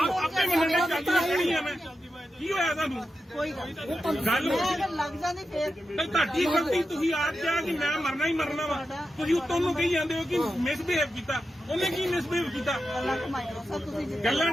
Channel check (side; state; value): both; normal; correlation 0.90